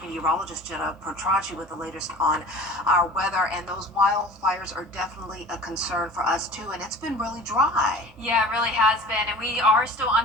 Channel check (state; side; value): normal; both; correlation 0.42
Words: Jenna Petracci with the latest on our weather. And those wildfires are definitely a concern for us too, and it's been really dry. Yeah, it really has been, and we are still